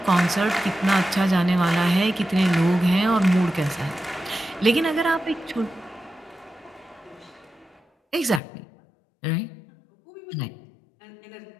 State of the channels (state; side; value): drops out; right; at 8.4 s